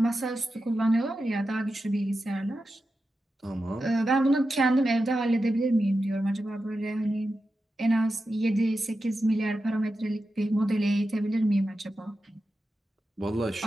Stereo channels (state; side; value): normal; both; correlation 0.90